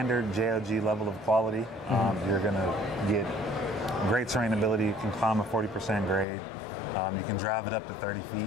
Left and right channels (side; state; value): right; drops out; at 6.2 s